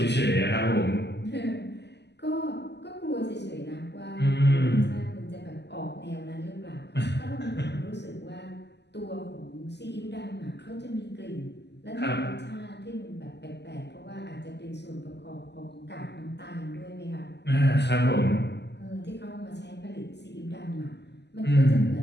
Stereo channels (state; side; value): late; right; 0.50 ms